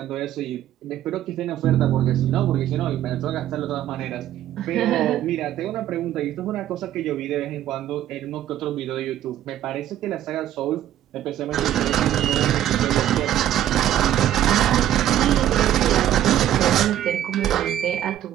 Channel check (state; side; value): quieter; left; 12.0 dB